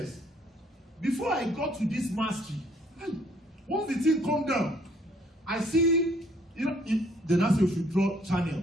Before I got to this mastery, once the thing come down, I see, the NASA should draw channel.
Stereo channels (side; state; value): both; normal; correlation 0.63